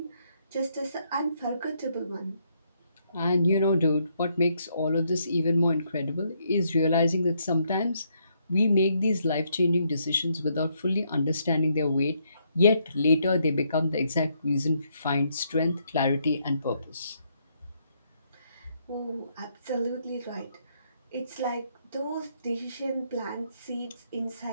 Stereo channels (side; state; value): both; inverted; correlation -0.74